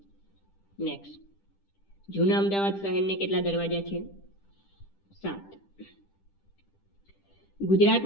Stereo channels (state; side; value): late; right; 10 ms